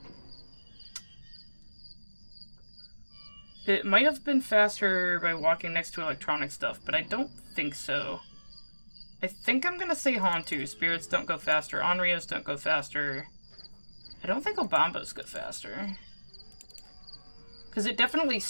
It might have been faster by walking next to electronic stuff, but I don't think so. I think I'm gonna say Hantu. Spirits don't go faster. Onryos don't go faster. I don't think Obambos go faster. Because it definitely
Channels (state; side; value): inverted; both; correlation -1.00